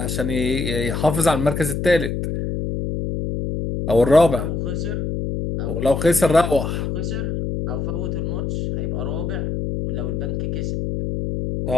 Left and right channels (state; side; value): noise; left; hum, 2 dB below the sound